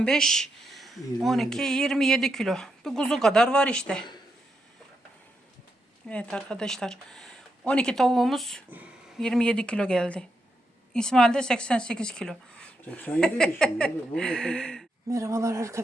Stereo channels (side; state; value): both; normal; correlation 0.83